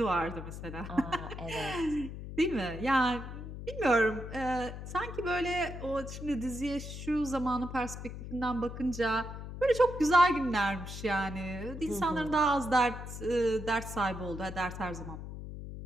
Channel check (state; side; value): noise; left; hum, 9 dB below the sound